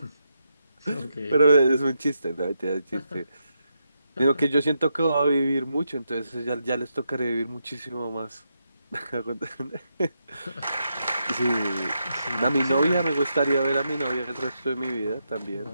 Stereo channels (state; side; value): inverted; both; correlation -0.83